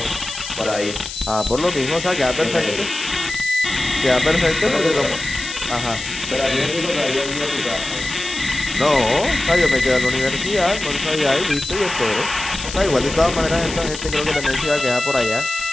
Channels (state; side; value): noise; left; hiss, 9 dB below the sound